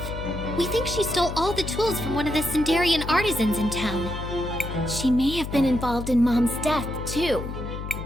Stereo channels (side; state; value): left; noise; hum, 7 dB below the sound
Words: We think she stole all the tools from one of the Sindarian artisans in town. She may have been involved in Mom's death, too.